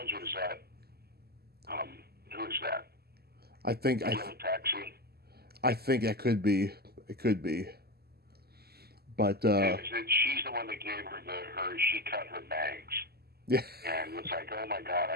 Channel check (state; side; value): late; left; 0.46 ms